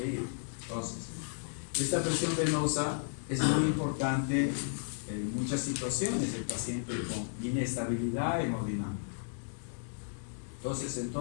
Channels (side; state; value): right; silent; digital silence